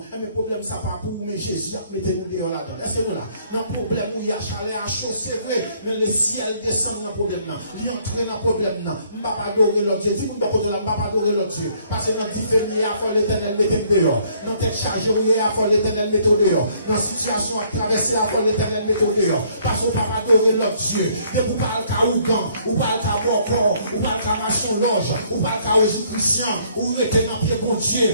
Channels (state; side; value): inverted; both; correlation -0.64